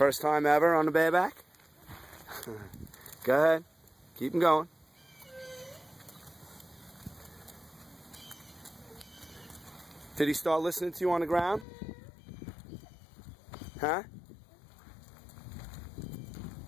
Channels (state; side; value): drops out; right; at 11.7 s